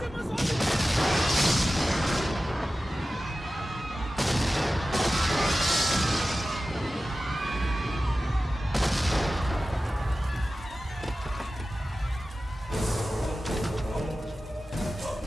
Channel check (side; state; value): both; normal; correlation 0.95